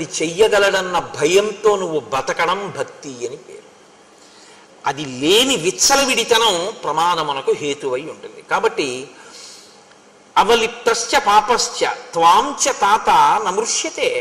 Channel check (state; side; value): identical; both; correlation 1.00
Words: చెయ్యగలడన్న భయంతో నువ్వు బతకడం భక్తి అని పేరు. అది లేని విచ్చలవిడితనం ప్రమాదమునకు హేతువై ఉంటుంది. కాబట్టి అవలిప్తశ్చ పాపశ్చ త్వాంచ తాత నమృష్యతే.